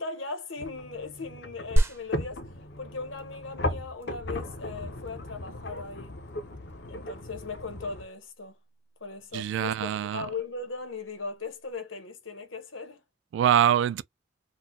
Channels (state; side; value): quieter; left; 3.6 dB